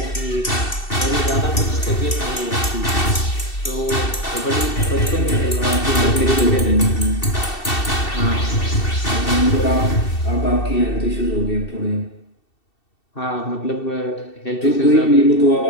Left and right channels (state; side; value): late; right; 2.7 ms